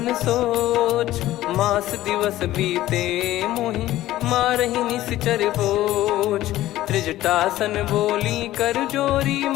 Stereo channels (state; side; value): quieter; right; 15.0 dB